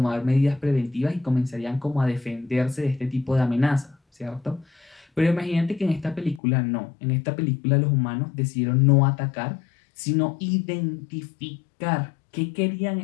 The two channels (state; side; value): drops out; right; at 6.4 s